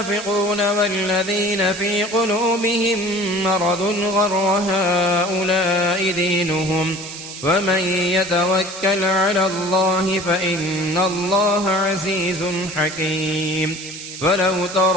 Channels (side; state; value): right; noise; hiss, 11 dB below the sound